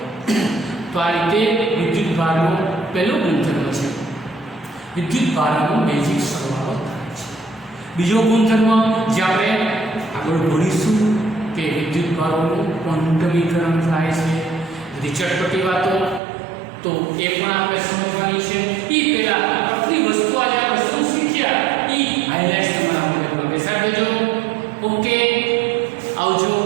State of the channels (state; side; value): drops out; left; at 16.2 s